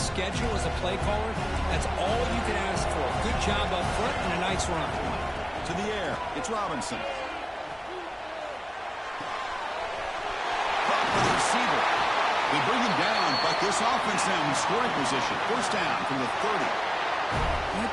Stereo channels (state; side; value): identical; both; correlation 1.00